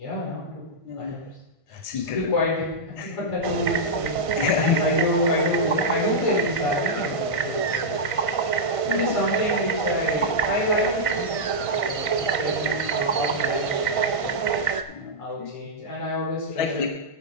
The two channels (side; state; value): right; late; 1.5 ms